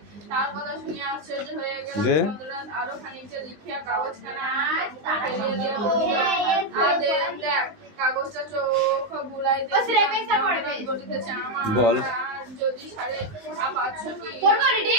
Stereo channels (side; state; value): left; late; 19 ms